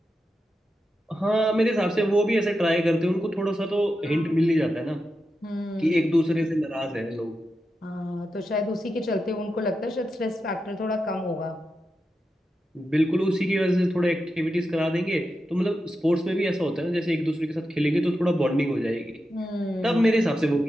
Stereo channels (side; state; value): both; normal; correlation 0.89